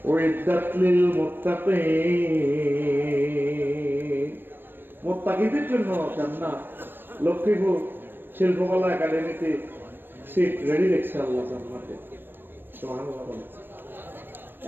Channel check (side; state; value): left; late; 0.096 ms